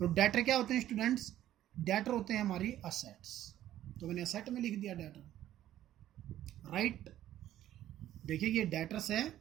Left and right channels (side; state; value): left; quieter; 12.7 dB